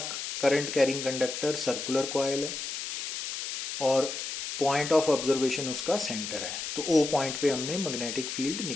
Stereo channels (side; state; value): left; noise; hiss, 5 dB below the sound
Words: current carrying conductor circular coil है और पॉइंट ऑफ ऑब्जर्वेशन उसका सेंटर है। तो ओ पॉइंट पे हमने मैग्नेटिक फील्ड